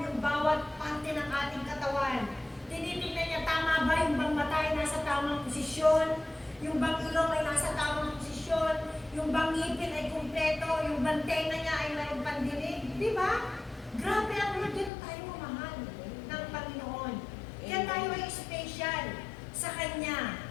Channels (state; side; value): drops out; right; at 14.9 s